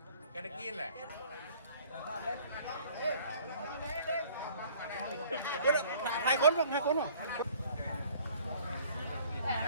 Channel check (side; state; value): both; inverted; correlation -0.54